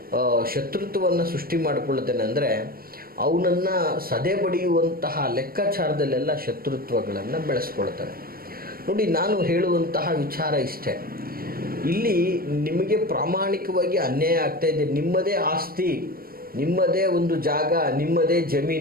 ಶತ್ರುತ್ವವನ್ನು ಸೃಷ್ಟಿ ಮಾಡಿಕೊಳ್ಳುತ್ತಾನೆ ಅಂದರೆ ಅವನನ್ನು ಸದೆ ಬಡಿಯುವಂತಹ ಲೆಕ್ಕಾಚಾರದಲ್ಲೆಲ್ಲ ಶತ್ರುತ್ವಗಳನ್ನು ಬೆಳೆಸ್ಕೊಳ್ತಾನೆ. ನೋಡಿ, ನಾನು ಹೇಳುವಂತಹ ವಿಚಾರ ಇಷ್ಟೇ, ಇಲ್ಲಿ ನಿಮಗೆ ಪ್ರಾಮಾಣಿಕವಾಗಿ ಅನ್ಯಾಯ ಆಗ್ತಾ ಇದೆ. ನಿಮ್ಮದೇ ಆಸ್ತಿ, ನಿಮ್ಮದೇ ಒಂದು ಜಾಗ, ನಿಮ್ಮದೇ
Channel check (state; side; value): late; left; 0.43 ms